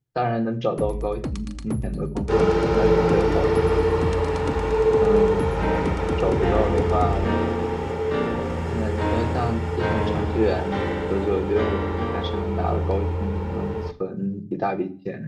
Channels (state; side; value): identical; both; correlation 1.00